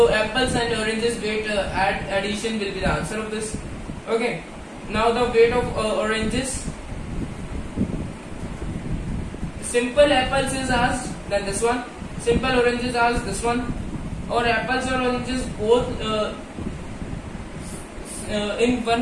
apples and oranges weight addition will be the answer of this. Okay. Now the weight of oranges. Simple apples is asked, then this one. Simple oranges asked, this one. Or apples or oranges both in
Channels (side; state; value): both; identical; correlation 1.00